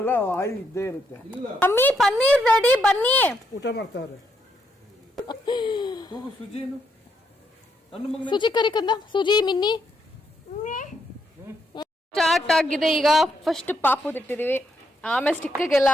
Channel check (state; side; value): normal; both; correlation 0.77